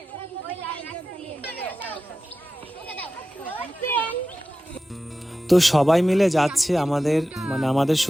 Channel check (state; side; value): normal; both; correlation 0.93